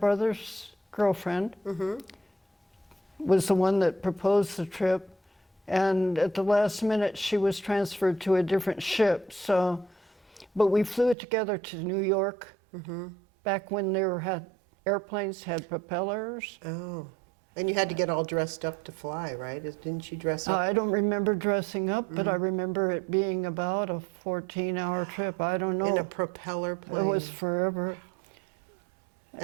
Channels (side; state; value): left; drops out; at 11.2 s